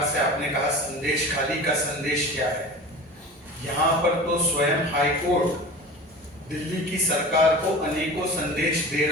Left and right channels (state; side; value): normal; both; correlation 0.35